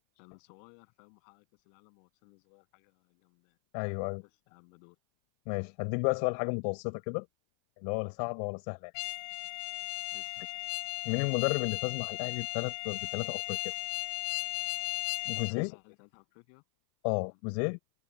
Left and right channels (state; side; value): silent; right; 54 dB below the other